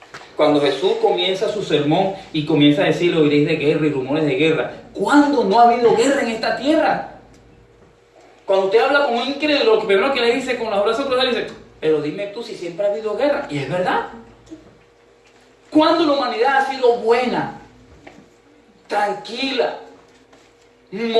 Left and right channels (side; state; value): both; identical; correlation 1.00